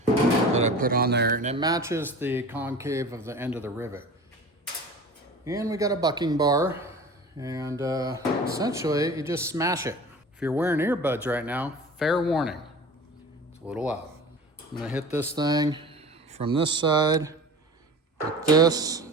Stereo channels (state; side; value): normal; both; correlation 0.38